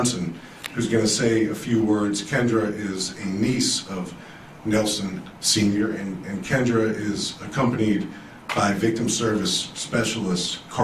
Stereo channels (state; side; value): identical; both; correlation 1.00